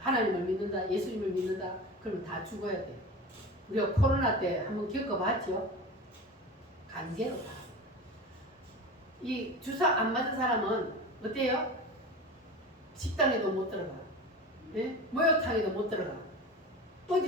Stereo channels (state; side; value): normal; both; correlation 0.31